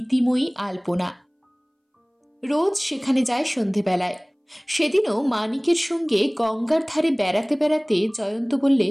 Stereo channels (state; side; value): identical; both; correlation 1.00